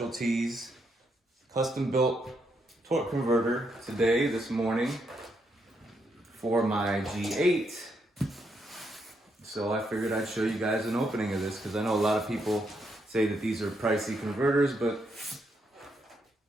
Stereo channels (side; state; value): both; normal; correlation 0.78